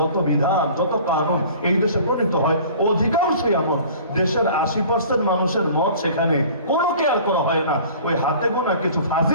বিধান, যত কানুন এই দেশে প্রণীত হয়, অধিকাংশই এমন দেশের 80% মানুষের মত সেখানে কোনো কেয়ার করা হয় না। ওই হাতে গোনা কিছু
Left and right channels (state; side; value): inverted; both; correlation -0.46